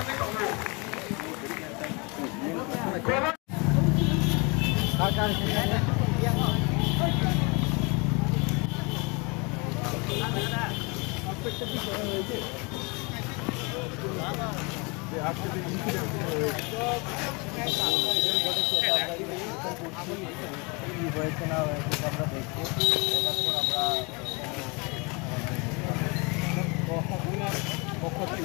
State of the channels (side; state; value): right; quieter; 29.7 dB